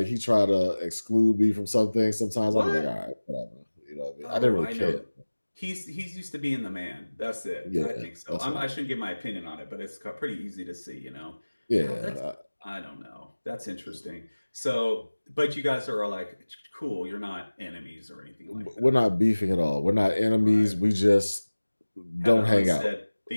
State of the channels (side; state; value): both; inverted; correlation -1.00